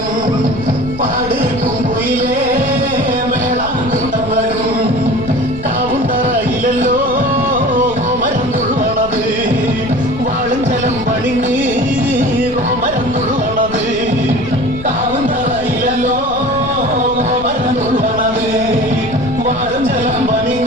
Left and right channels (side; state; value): left; noise; rumble, 13 dB below the sound